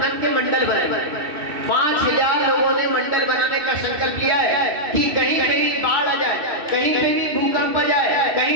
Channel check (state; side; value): late; left; 2.7 ms